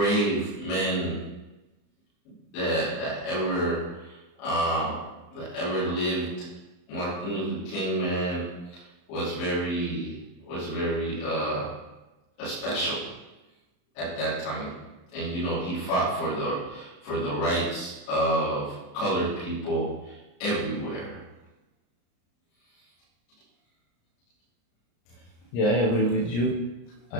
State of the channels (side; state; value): right; late; 34 ms